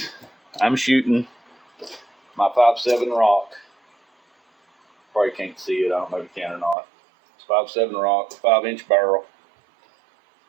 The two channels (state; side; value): drops out; left; at 6.8 s